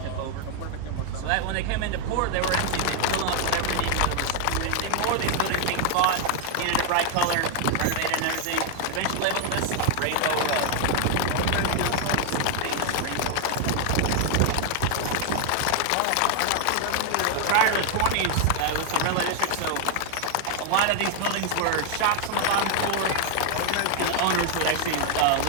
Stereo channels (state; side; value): different; both; correlation 0.00